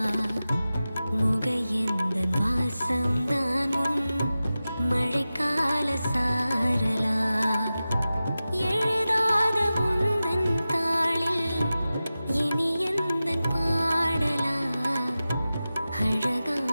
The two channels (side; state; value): both; inverted; correlation -0.95